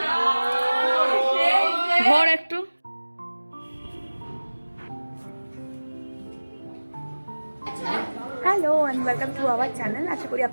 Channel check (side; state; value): both; inverted; correlation -1.00